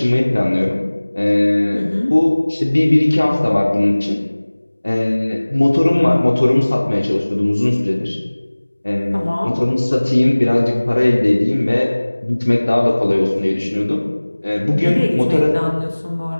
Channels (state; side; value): inverted; both; correlation -1.00